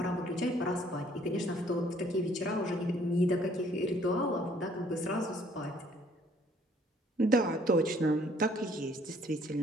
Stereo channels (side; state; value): both; normal; correlation 0.61